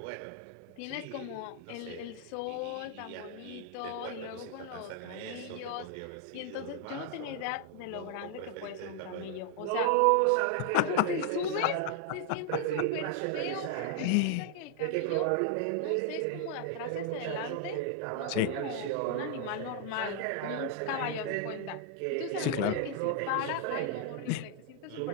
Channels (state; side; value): different; both; correlation 0.00